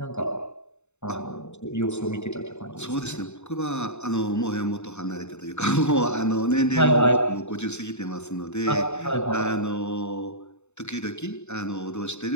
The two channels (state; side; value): late; right; 0.82 ms